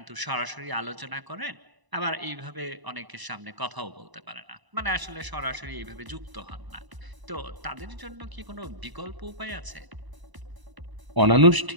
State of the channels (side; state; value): left; late; 1.0 ms